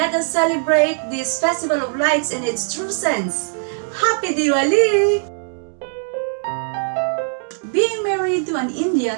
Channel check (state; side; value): silent; left; digital silence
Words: us celebrate this Festival of Lights in its true sense. Happy Diwali! Being married to an